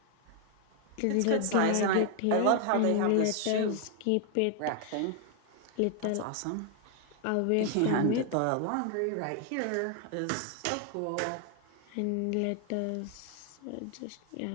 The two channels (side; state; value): both; different; correlation 0.00